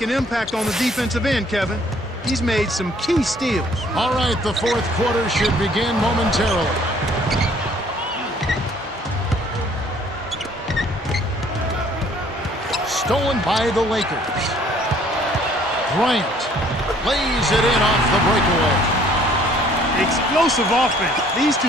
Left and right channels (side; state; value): both; normal; correlation 0.59